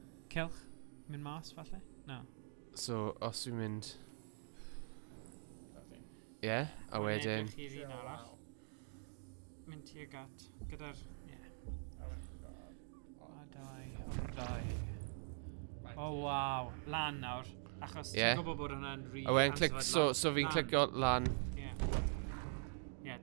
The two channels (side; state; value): left; silent; digital silence